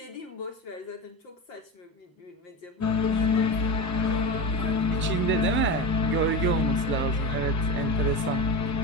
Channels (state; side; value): normal; both; correlation 0.24